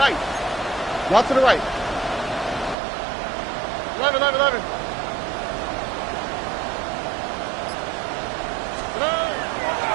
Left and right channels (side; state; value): left; drops out; at 2.8 s